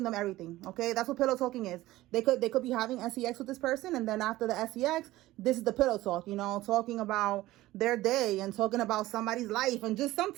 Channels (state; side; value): quieter; left; 16.9 dB